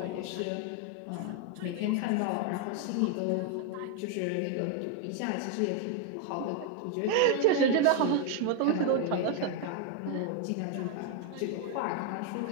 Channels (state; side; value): different; both; correlation 0.01